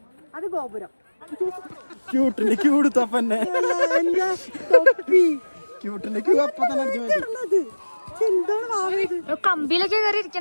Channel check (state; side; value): inverted; both; correlation -1.00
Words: അത് ഗോപുരം. കമ്പിയിലൊക്കെ കയറി